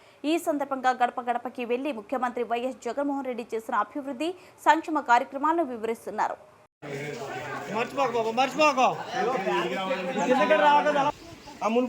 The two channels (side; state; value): both; identical; correlation 1.00